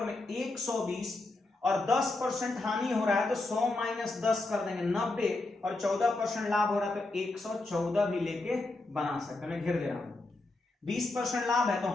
में 120 और 10% हानि हो रहा है तो 100 माइनस 10 कर देंगे 90, और 14% लाभ हो रहा है तो 114 भी लेके बना सकते हैं। मैं घेर दे रहा हूं, 20% लाभ है तो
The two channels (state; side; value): quieter; right; 3.0 dB